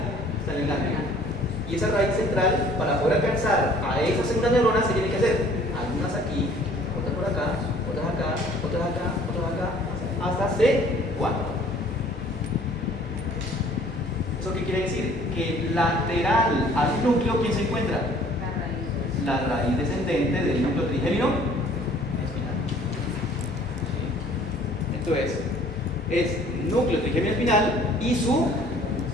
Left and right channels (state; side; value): normal; both; correlation 0.55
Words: está en el ganglio. Y esa raíz central, para poder alcanzar a esa segunda neurona, se tiene que hacer algunas aquí, otras por acá, otras acá, otras acá, otras acá, hasta C4. ¿Eso qué quiere decir? Que lateral al núcleo, ¿quién se encuentra? La raíz descendente del núcleo trigémino espinal. Entonces, es núcleo trigémino espinal y su